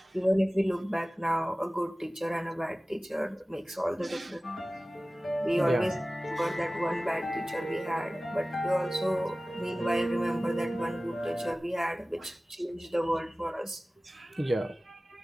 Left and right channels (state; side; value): normal; both; correlation 0.97